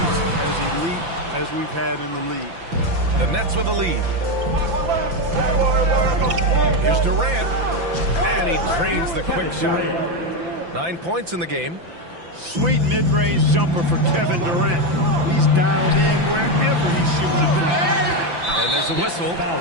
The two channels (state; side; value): late; left; 5.9 ms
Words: as elite as we've had in the league. The Nets with a lead. Here's Durant, and he drains the quick shot. 9 points in the game. Sweet mid-range jumper for Kevin Durant. He's dialed in wherever he shoots it from. And there's a whistle.